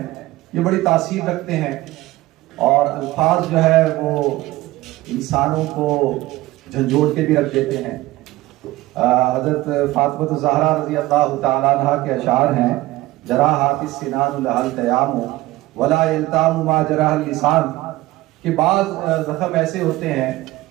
ये बड़ी तासीर रखते हैं, और अल्फाज जो है वो इंसानों को झंझोड़ के भी रख देते हैं। हजरत फातिमा ज़हरा रज़ी अल्लाह तआला अन्हा के अशार हैं, जरा हाफिज़ सिनान लहल तयामु वला यल्तामु मा जराहल लिसान, कि बाद जख्म ऐसे होते हैं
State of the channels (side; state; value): left; quieter; 18.0 dB